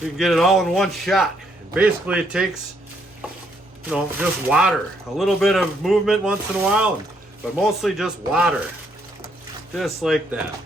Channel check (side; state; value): both; normal; correlation 0.72